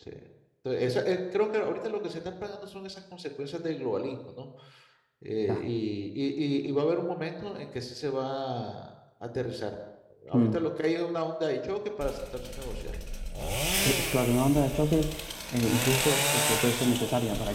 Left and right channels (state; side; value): identical; both; correlation 1.00